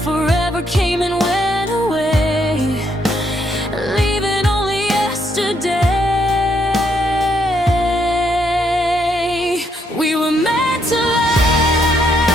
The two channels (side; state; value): both; normal; correlation 0.74